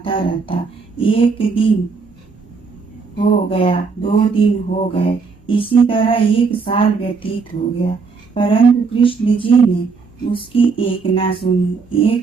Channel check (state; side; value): quieter; left; 4.8 dB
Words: रहता। एक दिन हो गया, 2 दिन हो गए, इसी तरह 1 साल व्यतीत हो गया। परंतु कृष्ण जी ने उसकी एक न सुनी।